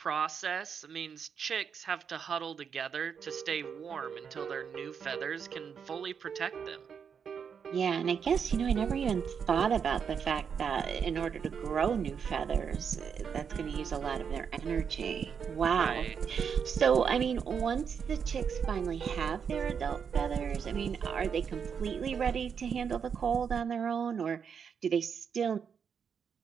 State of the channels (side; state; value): left; quieter; 6.9 dB